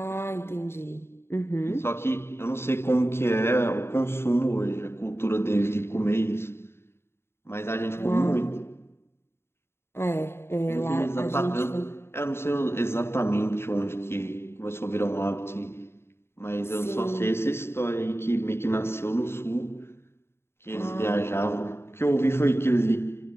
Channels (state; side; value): late; right; 0.12 ms